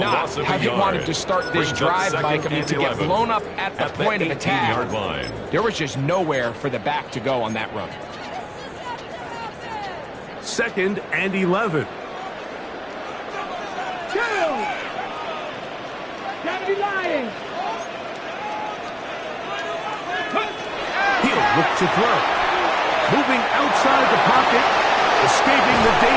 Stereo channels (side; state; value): both; identical; correlation 1.00